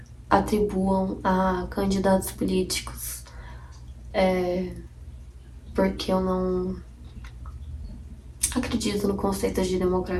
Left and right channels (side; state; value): both; identical; correlation 1.00